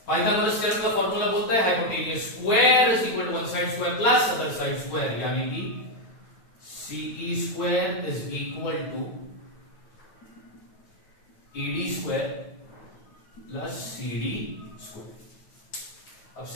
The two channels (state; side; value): late; right; 9.2 ms